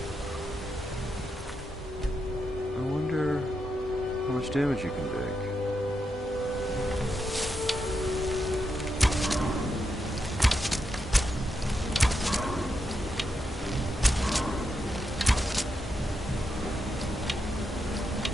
I wonder how much damage you can take.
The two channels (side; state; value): both; normal; correlation 0.84